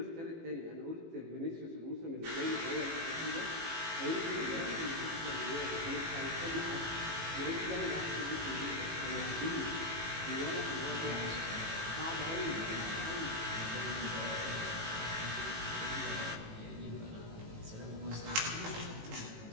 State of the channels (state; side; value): late; left; 18 ms